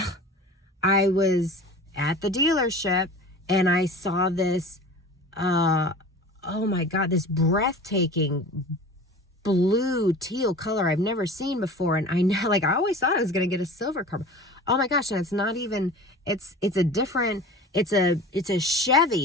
was at the dealership and I saw this, oh my God, this breathtaking blue teal color I've never seen before. And I always thought I was going to get a silver car. Oh my gosh. And it's not even, it's a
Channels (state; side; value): normal; both; correlation 0.38